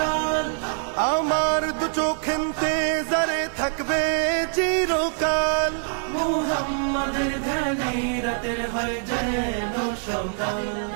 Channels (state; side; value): silent; left; 62 dB below the other